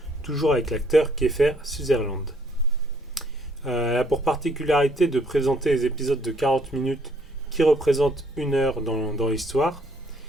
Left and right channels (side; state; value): both; normal; correlation 0.65